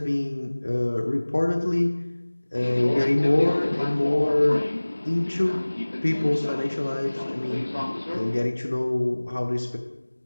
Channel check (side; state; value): both; inverted; correlation -1.00